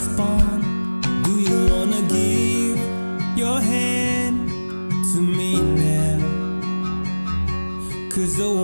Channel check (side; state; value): both; inverted; correlation -1.00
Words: Do you wanna give your hand to me now? 'Cause I